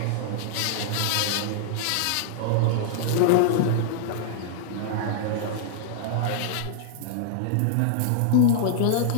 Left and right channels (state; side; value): different; both; correlation -0.01